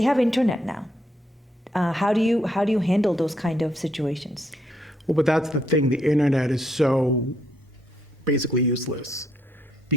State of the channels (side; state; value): both; normal; correlation 0.74